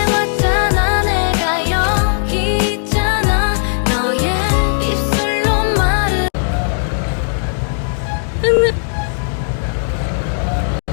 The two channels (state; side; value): silent; right; digital silence